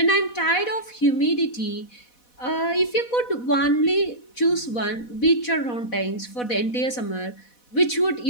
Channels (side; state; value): right; late; 4.1 ms